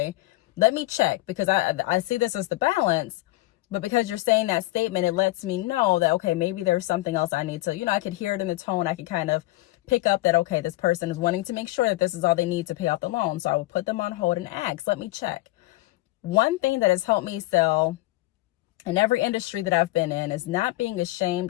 let me check, because I see this as the balance, but because you're saying that statement, it lets me know that, okay, maybe there's something else I need to, I could hear it in the tone. I could kind of pick up that, okay, this person is wanting to make sure that this is all they need to pay off the loan. So I would put them on hold and ask, let me check. One thing that has helped me sell in every industry that I've been in is not being ashamed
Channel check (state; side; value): quieter; right; 18.8 dB